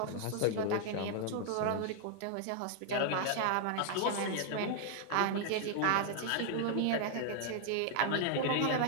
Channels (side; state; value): both; different; correlation 0.00